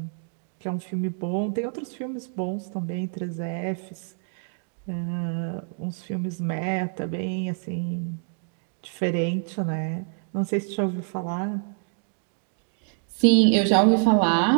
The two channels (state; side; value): silent; left; digital silence